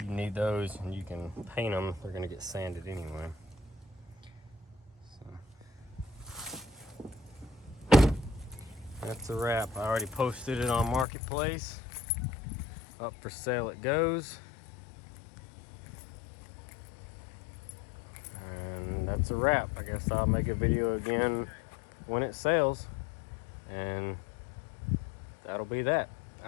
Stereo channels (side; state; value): right; drops out; at 11.1 s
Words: you need those and you can paint them. They're gonna get sanded anyway. So that's a wrap. I already posted it on Marketplace. Up for sale it goes. And that's a wrap. I guess I'll make a video again when it sells, and that'll be that.